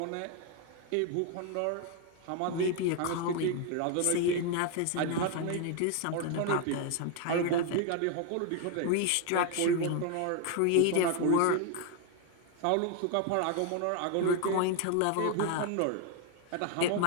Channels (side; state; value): both; different; correlation 0.01